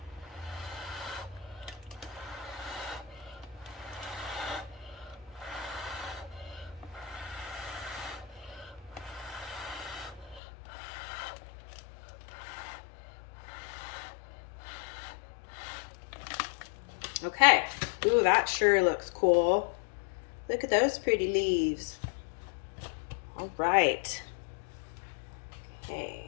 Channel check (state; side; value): drops out; right; at 10.4 s